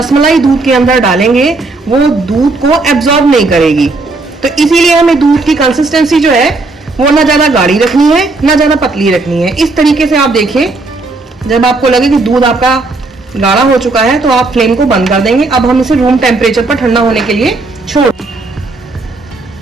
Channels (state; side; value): quieter; left; 3.4 dB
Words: दूध के अंदर डालेंगे वो दूध को एब्जॉर्ब नहीं करेगी। तो इसीलिए हमें दूध की कंसिस्टेंसी जो है वो ना ज्यादा गाढ़ी रखनी है ना ज्यादा पतली रखनी है। इस तरीके से आप देखिए, जब आपको लगे कि दूध आपका गाढ़ा हो चुका है तो आप फ्लेम को बंद कर देंगे। अब हम इसे रूम टेम्परेचर पर ठंडा होने के लिए छोड़।